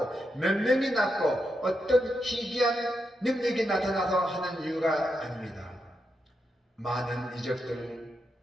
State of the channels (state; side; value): normal; both; correlation 0.84